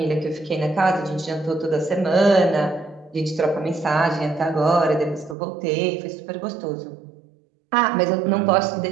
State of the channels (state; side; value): drops out; left; at 5.4 s